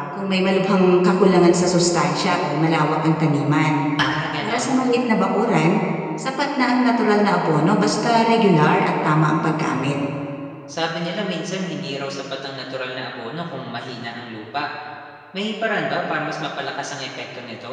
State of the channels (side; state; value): both; identical; correlation 1.00